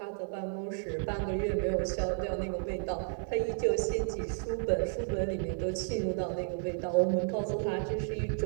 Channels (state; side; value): silent; left; 56 dB below the other